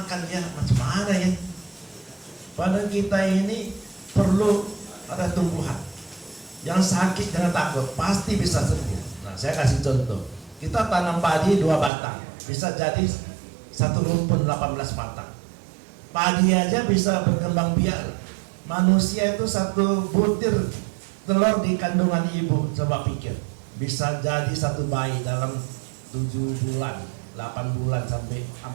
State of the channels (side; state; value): left; drops out; at 11.9 s